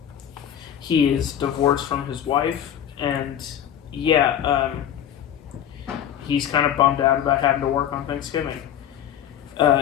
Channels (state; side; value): quieter; right; 10.1 dB